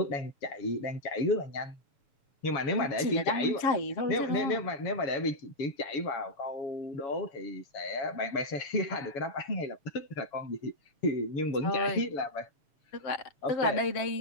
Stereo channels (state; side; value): late; right; 7.5 ms